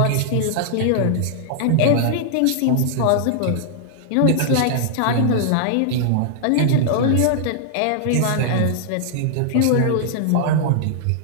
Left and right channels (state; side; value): different; both; correlation -0.01